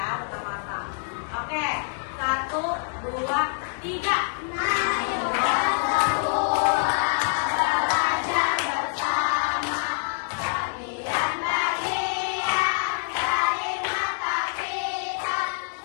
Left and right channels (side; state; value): right; silent; 61 dB below the other